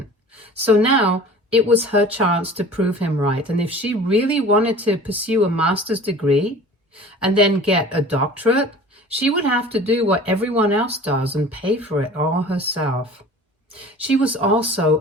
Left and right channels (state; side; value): normal; both; correlation 0.43